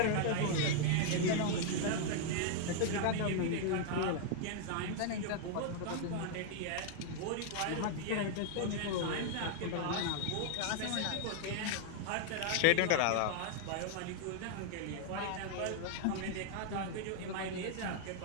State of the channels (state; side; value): different; both; correlation 0.00